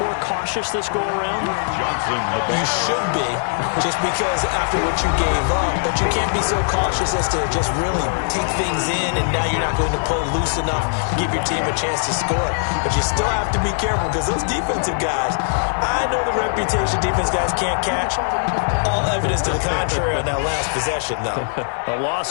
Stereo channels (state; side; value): silent; right; digital silence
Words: cautious this go-around? Johnson, You should be, just because after what you gave up. But you can't be so cautious as to just really take things in, and now you're not going to play loose enough to give your team a chance to score. But you still have to be careful because those defensive guys, I know the reputation defense guys can't catch. All evidence to the contrary on that last possession, though. A